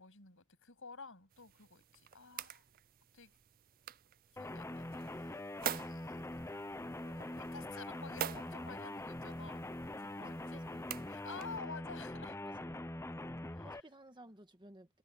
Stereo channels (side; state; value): both; normal; correlation 0.44